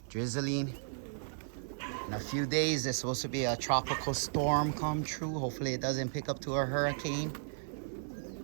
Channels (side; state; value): left; silent; 55 dB below the other